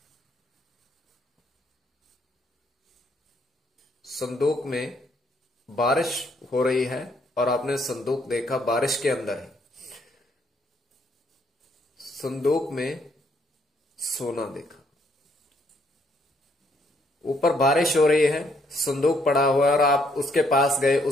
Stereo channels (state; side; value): normal; both; correlation 0.70